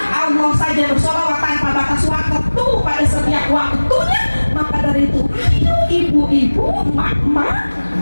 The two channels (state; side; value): inverted; both; correlation -1.00